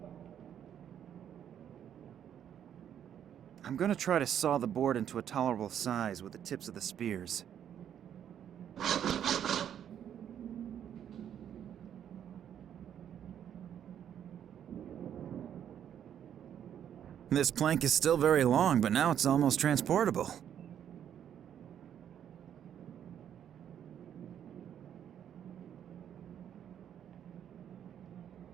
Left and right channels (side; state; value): left; quieter; 9.5 dB